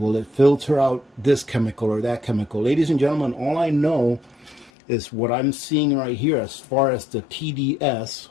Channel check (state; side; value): drops out; right; at 4.7 s